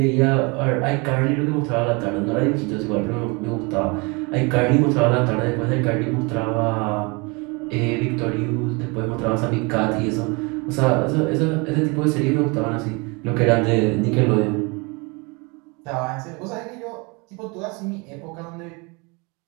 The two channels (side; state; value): left; quieter; 28.9 dB